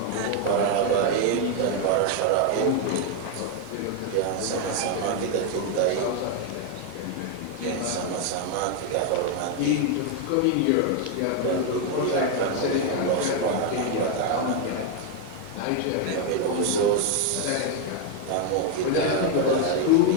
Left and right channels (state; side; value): different; both; correlation 0.01